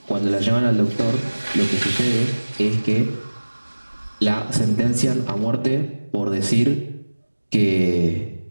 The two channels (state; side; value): inverted; both; correlation -1.00